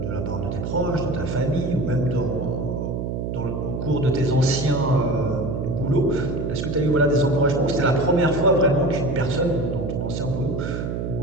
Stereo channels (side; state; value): right; noise; hum, 3 dB below the sound